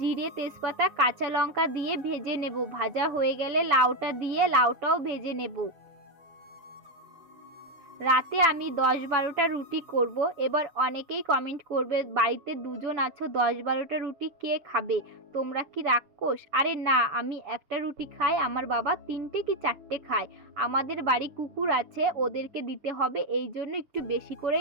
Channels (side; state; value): left; late; 6.8 ms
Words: তেজপাতা কাঁচা লঙ্কা দিয়ে ভেজে নেব। ভাজা হয়ে গেলে লাউটা দিয়ে লাউটাও ভেজে নেব। রাতে আমি 10-12টা রুটি করব। এবার অনেকেই কমেন্ট করবে, বাড়িতে দুজন আছো, 10-12টা রুটি কে খাবে? তোমরা কি রাক্ষস? আরে না, আমি একটা রুটি খাই, আমার বাবা 3টে কি 4টে খায়। আমাদের বাড়ি কুকুর আছে, ওদেরকে দিতে হবে, এই জন্য একটু বেশি